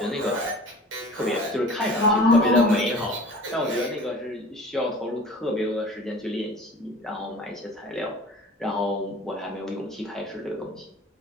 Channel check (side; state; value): both; normal; correlation 0.43